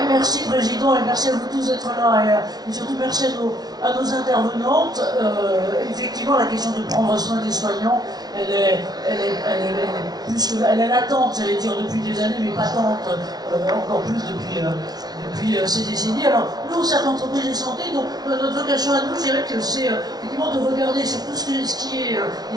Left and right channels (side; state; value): left; late; 0.19 ms